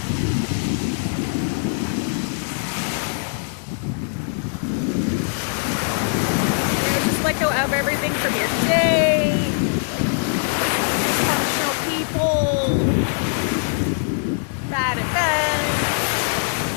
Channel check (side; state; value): right; silent; 64 dB below the other